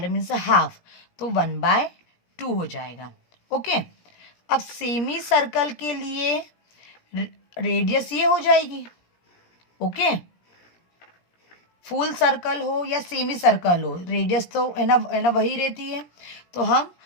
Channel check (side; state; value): right; late; 17 ms